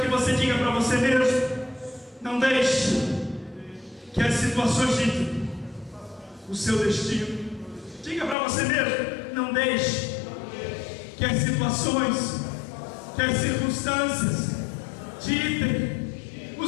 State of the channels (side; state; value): right; drops out; at 8.3 s